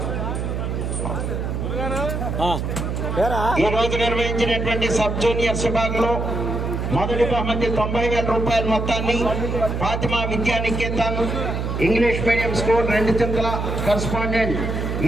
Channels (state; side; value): noise; right; hum, 2 dB below the sound